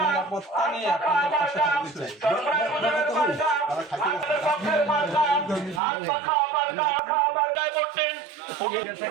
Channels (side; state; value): left; drops out; at 5.8 s